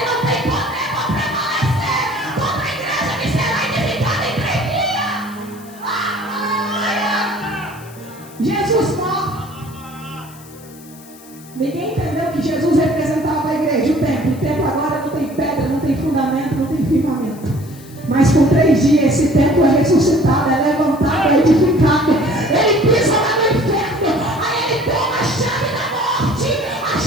não têm poder para prevalecer contra a igreja que será edificada em 3 dias. Jesus morre. Ninguém entendeu que Jesus representava a igreja, o templo. O templo agora não tem pedra, não tem fundamento, não tem firmamento. Mas por 3 dias esse templo é ressuscitado, é levantado, é edificado. Ele pisa lá no inferno, aí ele toma a chave da morte, a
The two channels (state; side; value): noise; left; hiss, 22 dB below the sound